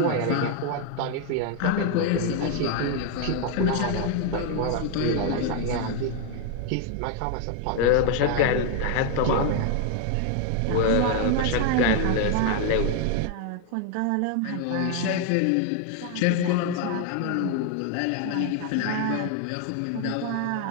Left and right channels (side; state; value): both; different; correlation 0.01